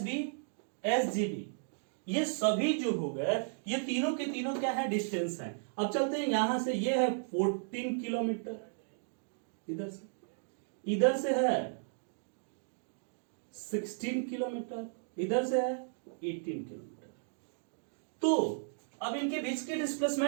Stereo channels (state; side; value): silent; left; digital silence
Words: B, S G B, ये सभी जो हो गए, ये तीनों के तीनों क्या है, डिस्टेंस है। अब चलते हैं यहां से, ये है 14 किलोमीटर, इधर से है 16 किलोमीटर, इधर से है 18 किलोमीटर। तो अब इनके बीच की